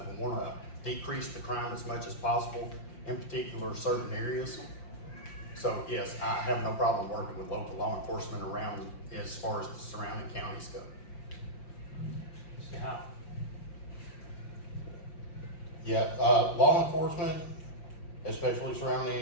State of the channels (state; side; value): late; right; 5.7 ms